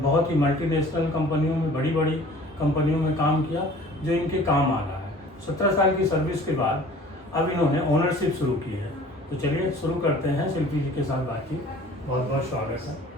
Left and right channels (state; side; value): normal; both; correlation 0.48